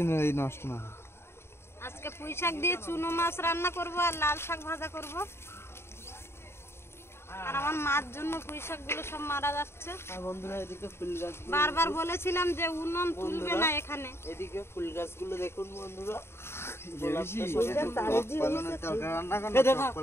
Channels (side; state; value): right; late; 0.12 ms